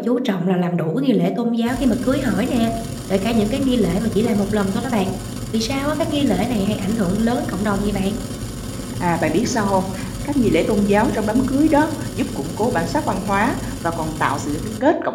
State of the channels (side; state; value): both; identical; correlation 1.00